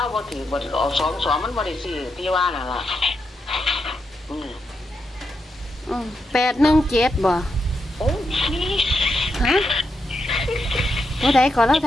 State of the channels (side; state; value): both; normal; correlation 0.84